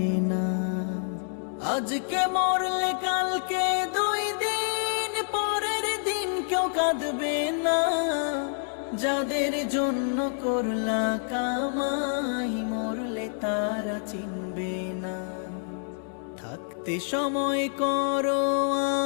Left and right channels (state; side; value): silent; right; 60 dB below the other